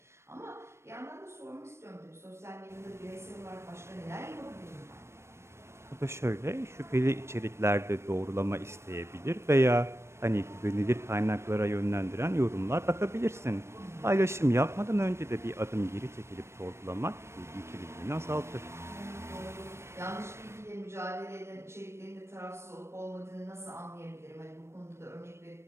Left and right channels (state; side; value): late; left; 0.13 ms